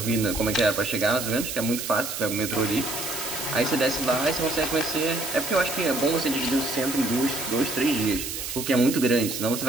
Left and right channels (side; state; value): right; noise; hiss, 6 dB below the sound